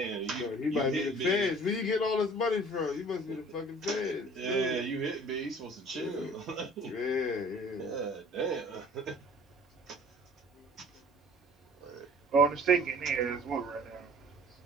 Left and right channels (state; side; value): normal; both; correlation 0.50